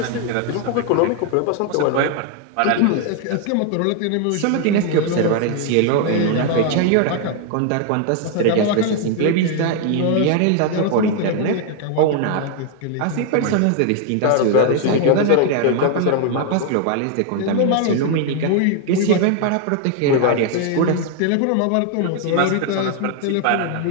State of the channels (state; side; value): different; both; correlation 0.00